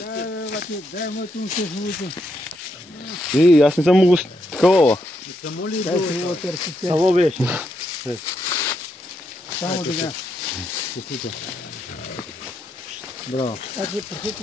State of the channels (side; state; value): both; normal; correlation 0.80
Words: И аз не съм могъл такова. Само беше. Само така. Браво. Значи, прехето